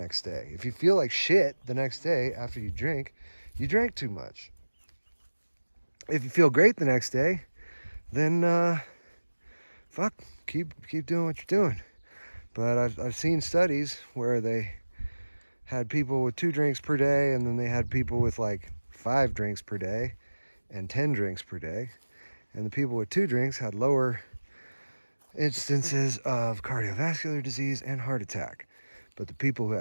day. If you feel like shit the next day after you drink, you drank too much. If you feel great the next day, then fuck, keep doing what you're doing. But I've seen studies where they had people with 2 drinks per day, and then they had people with like 5 drinks per day and 10 drinks per day. And the people with 2 drinks had lower instances of cardiovascular disease and heart attack. But the people who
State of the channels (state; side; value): inverted; both; correlation -1.00